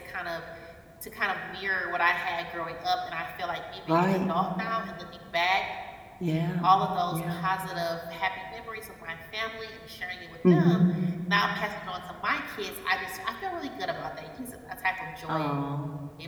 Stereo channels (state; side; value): identical; both; correlation 1.00